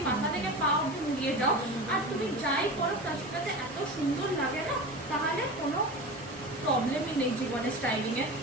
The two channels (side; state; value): both; normal; correlation 0.30